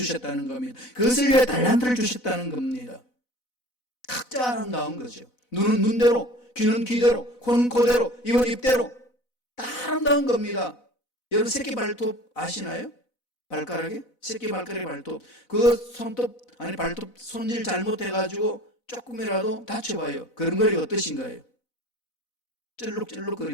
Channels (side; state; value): right; late; 4.0 ms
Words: 겁니다. 그것을 위하여 달란트를 주셨다는 겁니다. 각자 아름다운 거죠. 눈은 눈대로, 귀는 귀대로, 코는 코대로, 입은 입대로 다 아름다운 겁니다. 여러분 새끼 발톱 아시나요? 발가락에? 새끼 발가락에 발톱. 그 발톱 손질 잘못해가지고 조금이라도 다쳐봐요. 걸음걸이가 어떠신가요?